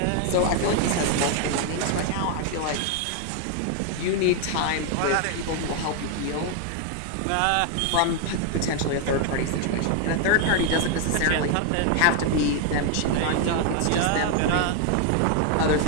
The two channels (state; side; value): different; both; correlation 0.01